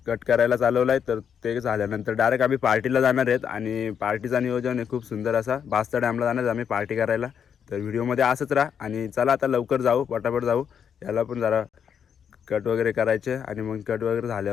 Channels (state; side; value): quieter; right; 7.8 dB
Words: कट करायला चालवलं आहे. तर ते झाल्यानंतर डायरेक्ट आम्ही पार्टीला जाणार आहेत आणि पार्टीचा नियोजन आहे खूप सुंदर असा. बास्ता डॅमला जाणार आम्ही पार्टी करायला. तर व्हिडिओमध्ये असंच राहा आणि चला आता लवकर जाऊ, पटापट जाऊ. याला पण जरा कट वगैरे करायचे आणि मग कट वगैरे